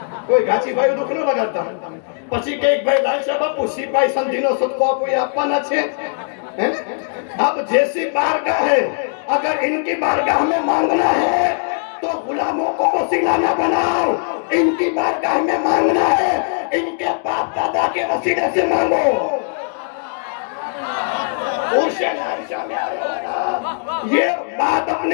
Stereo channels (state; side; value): silent; right; digital silence